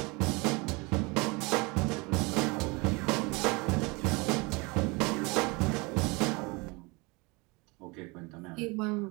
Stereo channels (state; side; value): quieter; left; 27.0 dB